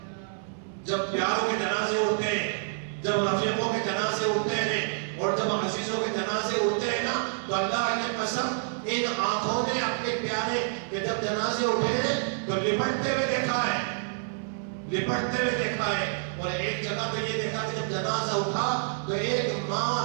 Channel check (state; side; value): silent; left; 59 dB below the other